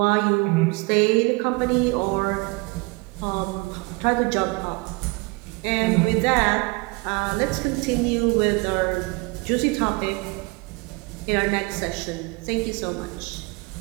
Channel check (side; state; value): left; quieter; 27.2 dB